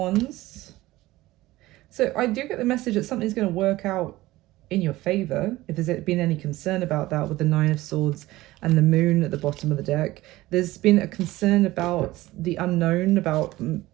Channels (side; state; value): left; quieter; 17.8 dB